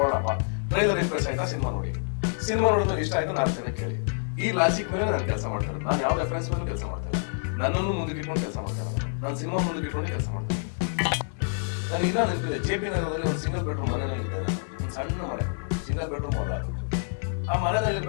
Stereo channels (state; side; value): silent; right; 60 dB below the other